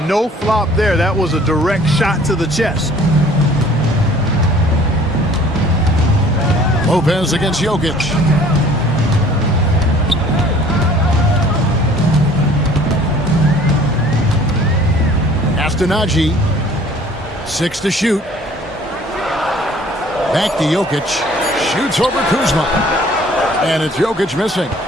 No flop there. That was a direct shot to the chest. Lopez against Jokic. Najee, 6 to shoot. Back to Jokic. Shoots over Kuzma. And it's Jokic missing.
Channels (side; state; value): both; normal; correlation 0.52